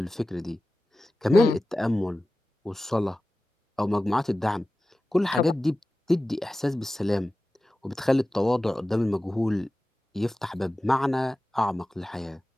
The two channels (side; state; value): both; normal; correlation 0.95